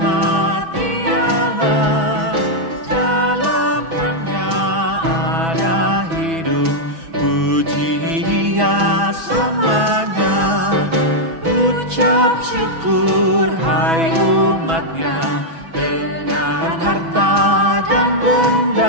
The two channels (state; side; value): late; left; 6.1 ms